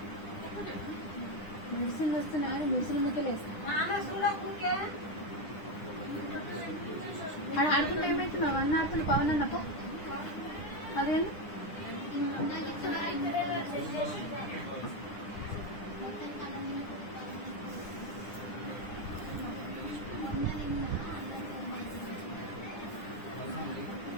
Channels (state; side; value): late; right; 9.8 ms